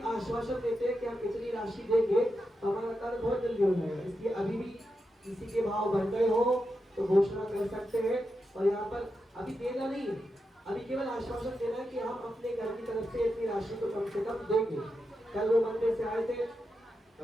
आश्वासन देते हैं कि हम इतनी राशि देंगे तो हमारा कार्य बहुत जल्दी हो जाएगा। इसलिए अभी भी किसी के भाव बढ़ गए हो तो घोषणा कर सकते हैं। और यहाँ पर अभी देना नहीं है, अभी केवल आश्वासन देना है कि हम अपने घर की तरफ से इतनी राशि तो कम से कम देंगे। कल वो मंदिर से आए थे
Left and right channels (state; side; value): normal; both; correlation 0.87